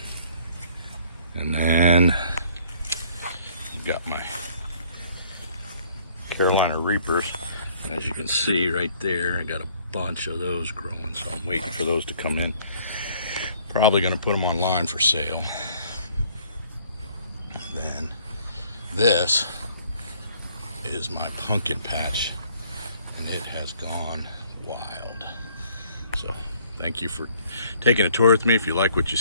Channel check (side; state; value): both; inverted; correlation -0.59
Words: And then I've got my Carolina Reapers. As you can see right there, I got a bunch of those growing, so I'm waiting for those to come in. Probably going to put them online for sale. Then this is my pumpkin patch, and it has gone wild. So thank you for taking a tour with me. If you like what you